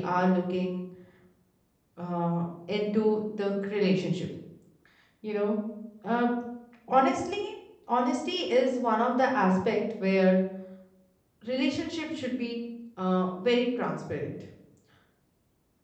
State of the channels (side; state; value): both; identical; correlation 1.00